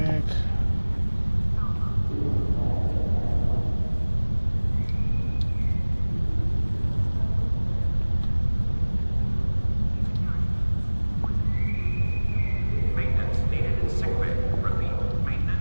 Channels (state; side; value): inverted; both; correlation -1.00